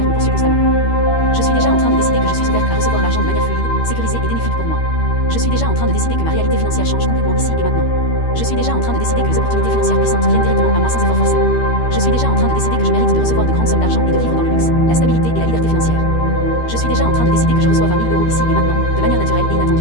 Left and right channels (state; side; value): late; right; 13 ms